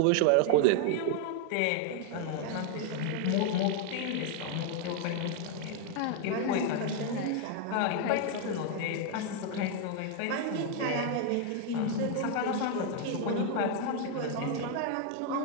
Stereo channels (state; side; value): different; both; correlation 0.00